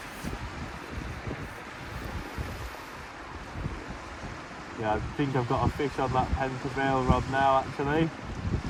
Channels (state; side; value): identical; both; correlation 1.00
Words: Yeah, I think I've got a fish on that Pen Prevail rod now actually.